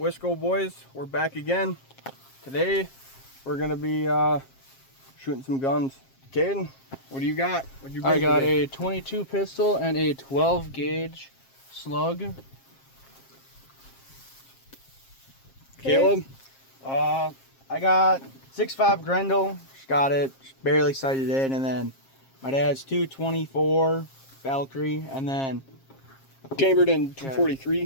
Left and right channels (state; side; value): late; right; 7.5 ms